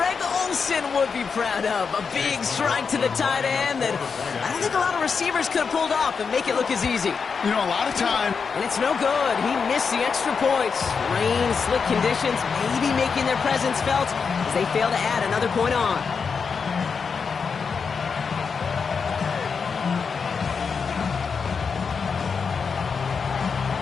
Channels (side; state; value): right; quieter; 5.6 dB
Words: Olsen would be proud of. A big strike to the tight end that I don't think a lot of receivers could have pulled off and make it look as easy. You know, a lot of time. And it's no good. He missed the extra points. Rain, slick conditions, maybe making their presence felt as they fail to add another point on.